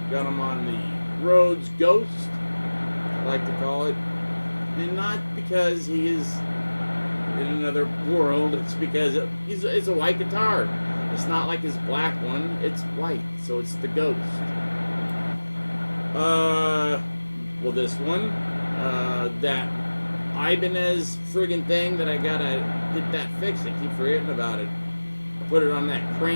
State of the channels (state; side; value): inverted; both; correlation -1.00